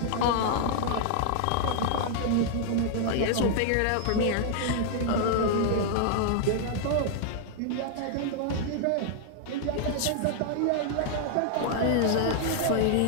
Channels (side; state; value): both; different; correlation -0.01